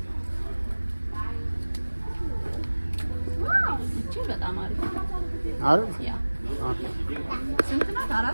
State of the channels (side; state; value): both; inverted; correlation -1.00